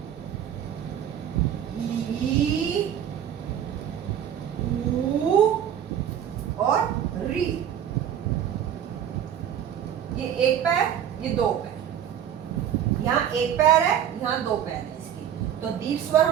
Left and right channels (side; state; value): left; quieter; 9.7 dB